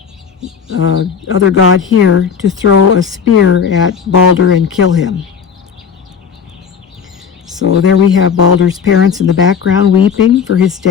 other god here to throw a spear at Balder and kill him. So there we have Balder's parents in the background weeping for his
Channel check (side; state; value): right; quieter; 6.7 dB